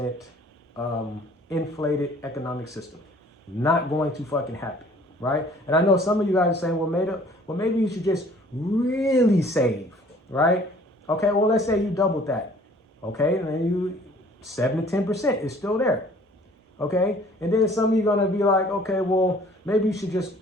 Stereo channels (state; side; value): normal; both; correlation 0.54